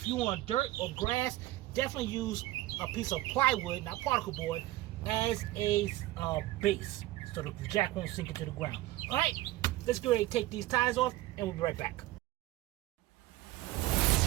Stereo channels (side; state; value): left; quieter; 16.8 dB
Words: you want dirt or grass, definitely use a piece of plywood, not particle board, as a base, so the jack won't sink into the ground. All right, let's go ahead and take these tires off, and we'll be right back.